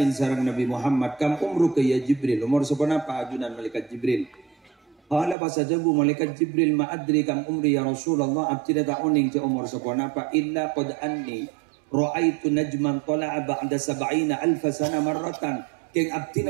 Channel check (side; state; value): left; drops out; at 5.4 s